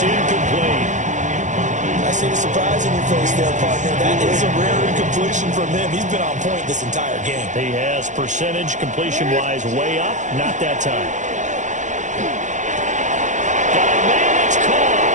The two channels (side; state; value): left; late; 0.35 ms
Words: incomplete. I see the surprise in your face there, partner. That is a rare incompletion from him. He's been on point this entire game. He has percentage completion-wise way up. Not that time. Got a man, it's